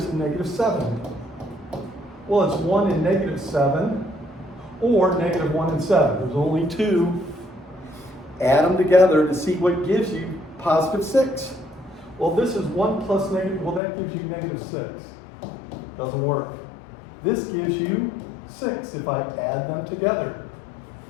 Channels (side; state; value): right; drops out; at 13.8 s